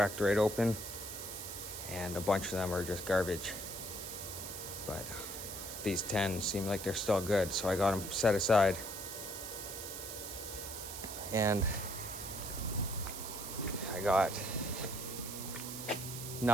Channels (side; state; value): right; noise; hiss, 8 dB below the sound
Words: right open, and a bunch of them are just garbage. But these 10 seem like they're still good, so I got them set aside. And I got